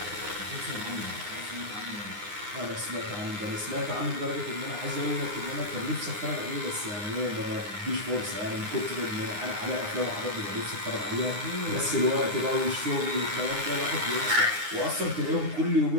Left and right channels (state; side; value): late; left; 9.7 ms